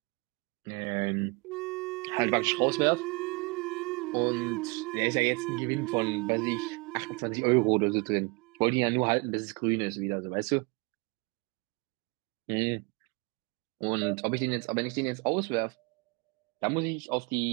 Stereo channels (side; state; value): left; quieter; 28.5 dB